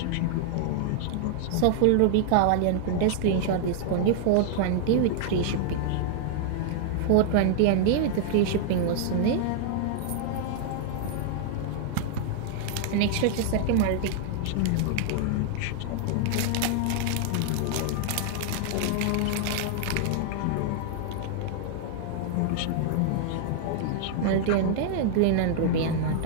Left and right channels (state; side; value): different; both; correlation -0.01